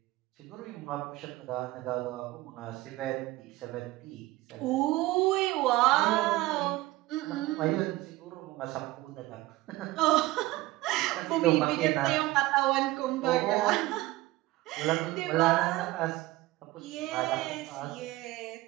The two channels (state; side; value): quieter; left; 18.5 dB